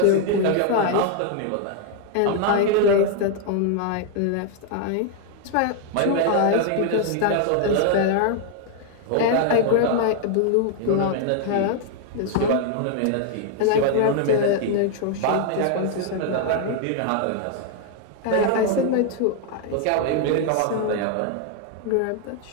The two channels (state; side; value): different; both; correlation 0.00